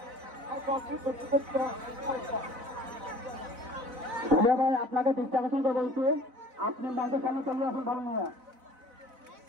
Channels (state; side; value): late; left; 4.0 ms